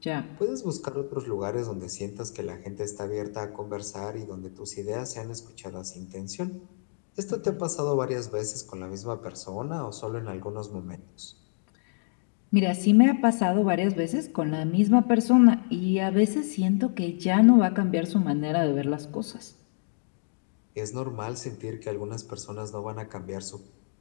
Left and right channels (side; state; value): right; silent; digital silence